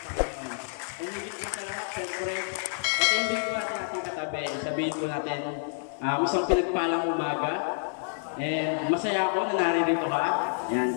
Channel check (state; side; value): silent; right; digital silence